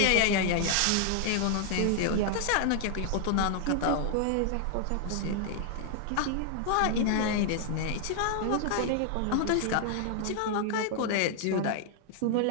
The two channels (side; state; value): both; different; correlation 0.00